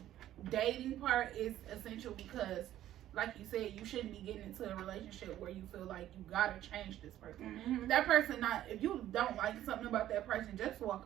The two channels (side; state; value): left; quieter; 12.7 dB